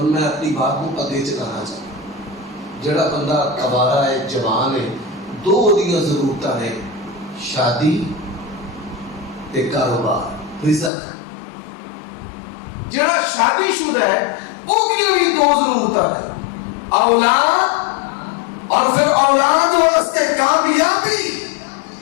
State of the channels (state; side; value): drops out; right; at 10.9 s